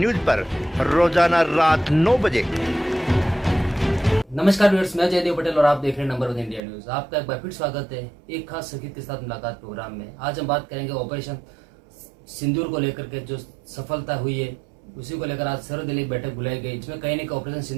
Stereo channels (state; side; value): drops out; left; at 6.6 s